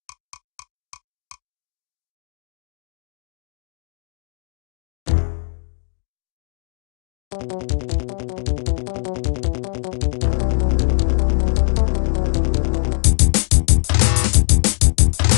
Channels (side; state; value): right; silent; digital silence